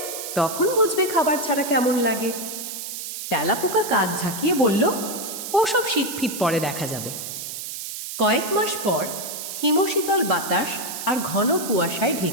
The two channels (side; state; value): right; noise; hiss, 7 dB below the sound